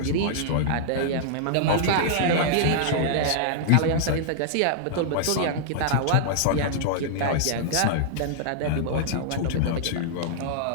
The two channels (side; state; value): both; different; correlation -0.01